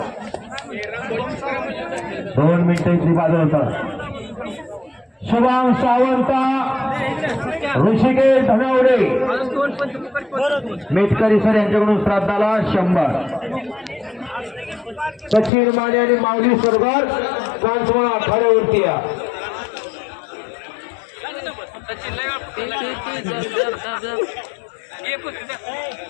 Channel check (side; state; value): right; drops out; at 15.5 s